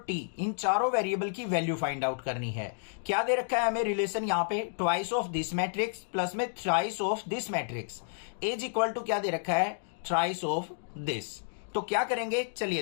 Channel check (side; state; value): right; silent; digital silence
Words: टी इन चारों वेरिएबल की वैल्यू फाइंड आउट करनी है। क्या दे रखा है हमें रिलेशन यहाँ पे, twice of this matrix plus में thrice of this matrix is equal to क्या दे रखा है, थ्राइस ऑफ दिस। तो क्या करेंगे चलिए